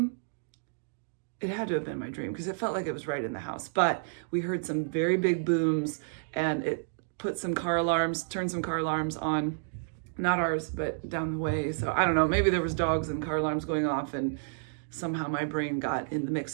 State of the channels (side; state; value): left; silent; digital silence